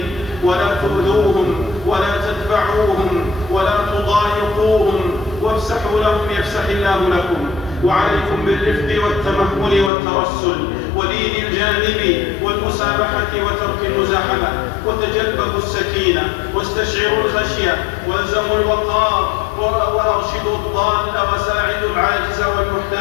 ولا تؤذوهم ولا تدفعوهم ولا تضايقوهم، وافسحوا لهم يفسح الله لكم. وعليكم بالرفق والتمهل والترسل ولين الجانب والمسامحة وترك المزاحمة، وتجلبوا السكينة واستشعروا الخشية، والزموا الوقار، وأرشدوا الضال وساعدوا العاجز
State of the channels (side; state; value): right; drops out; at 9.9 s